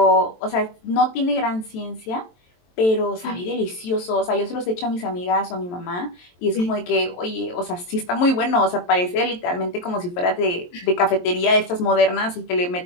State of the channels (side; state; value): right; late; 23 ms